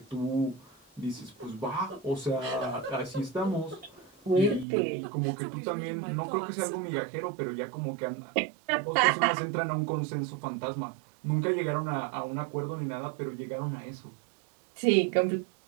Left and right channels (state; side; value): drops out; left; at 4.7 s